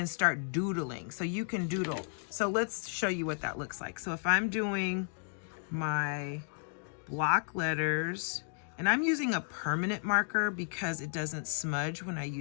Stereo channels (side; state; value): right; silent; digital silence